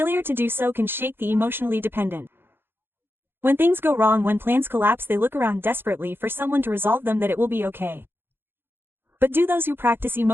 to do so can shake the emotionally dependent. When things go wrong, when plans collapse, they look around desperately for someone to resolve them, that it will be okay. But do those who practice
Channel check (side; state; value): left; late; 0.10 ms